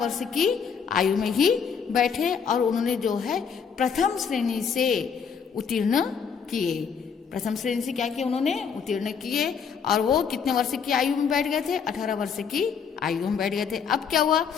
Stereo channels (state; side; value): quieter; right; 6.5 dB